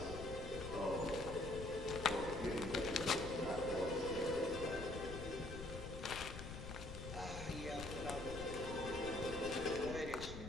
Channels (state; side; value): noise; left; rumble, 8 dB below the sound